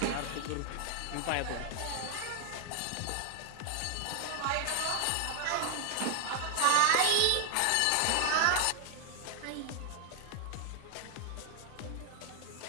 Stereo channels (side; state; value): both; different; correlation 0.00